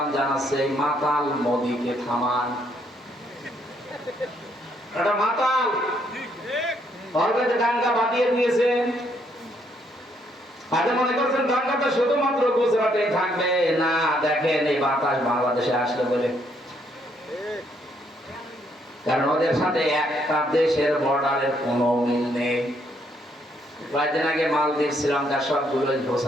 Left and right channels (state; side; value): normal; both; correlation 0.71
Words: জানাচ্ছে মাতাল মোদিকে থামান। এটা মাতাল অলরেডি দাঙ্গা বাঁধিয়ে দিয়েছেন। আজ মনে করছেন দাঙ্গাটা শুধুমাত্র গুজরাটে থাকবে না, দেখেন এই বাতাস বাংলাদেশে আসলে বলে, কারণ ওদের সাথে একটা দেশের বর্ডারের কোনো মিল নেই। কয়েকদিন আগে মালদ্বীপ শ্রীলঙ্কার সবগুলো